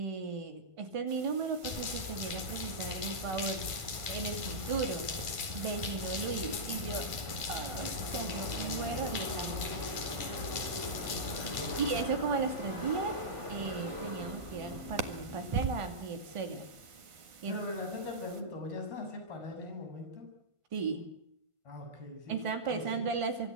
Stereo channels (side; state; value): left; late; 1.5 ms